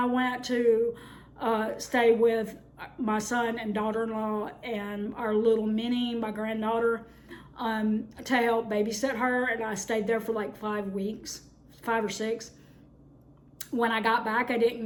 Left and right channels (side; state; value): both; identical; correlation 1.00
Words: went to stay with my son and daughter-in-law and our little Minnie, my granddaughter, to help babysit her. And I stayed there for 5 or 6. When I got back, I